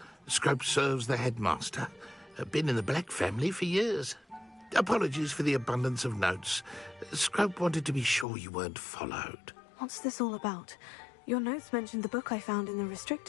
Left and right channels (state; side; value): drops out; right; at 8.2 s